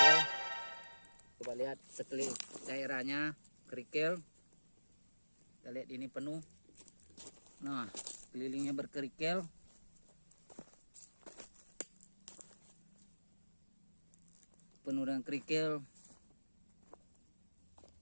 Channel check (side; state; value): both; inverted; correlation -1.00